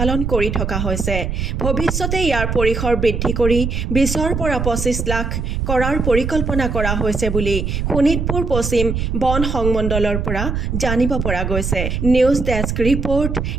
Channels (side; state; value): right; noise; rumble, 2 dB below the sound